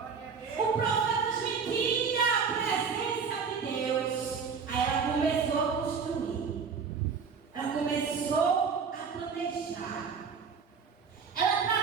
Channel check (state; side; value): quieter; left; 5.8 dB